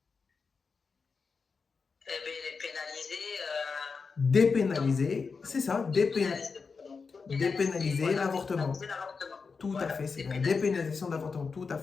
Eh bien, elle est pénalisée. Dépénaliser, c'est ça, dépénaliser l'avortement. Tout à fait, c'est la dépénalisation de l'avortement, tout à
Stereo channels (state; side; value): quieter; right; 5.0 dB